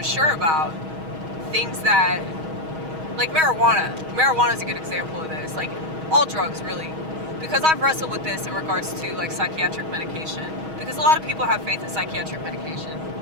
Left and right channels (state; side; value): late; left; 6.3 ms